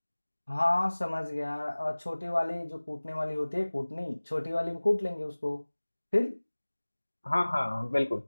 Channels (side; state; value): both; inverted; correlation -1.00